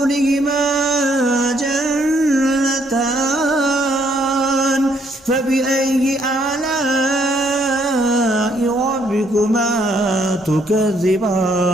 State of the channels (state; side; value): normal; both; correlation 0.69